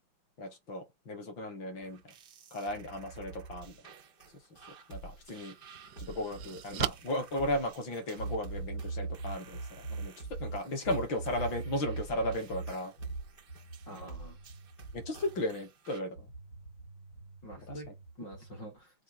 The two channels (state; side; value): late; right; 5.8 ms